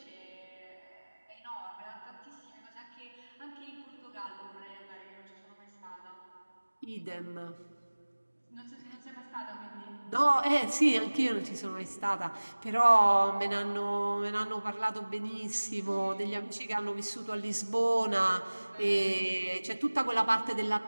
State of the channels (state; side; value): inverted; both; correlation -1.00